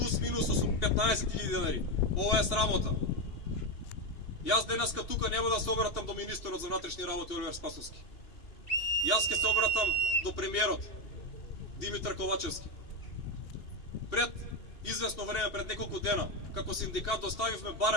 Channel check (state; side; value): late; right; 2.7 ms